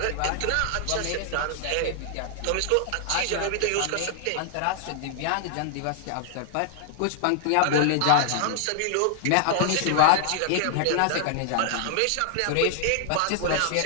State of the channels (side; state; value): both; different; correlation 0.00